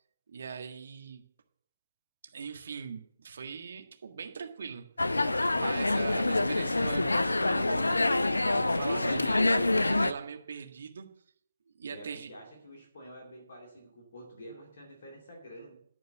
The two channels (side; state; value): both; inverted; correlation -0.95